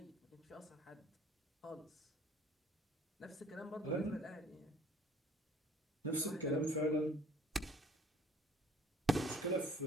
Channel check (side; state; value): both; normal; correlation 0.54